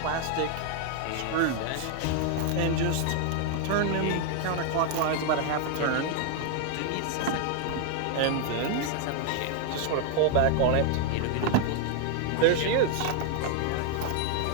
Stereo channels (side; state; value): both; different; correlation 0.00